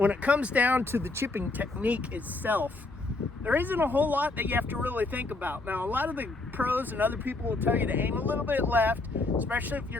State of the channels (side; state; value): right; quieter; 3.2 dB